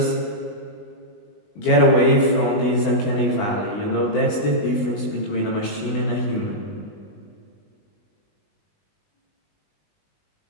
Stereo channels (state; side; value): late; right; 20 ms